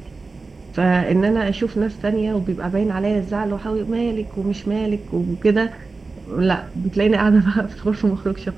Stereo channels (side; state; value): left; quieter; 3.9 dB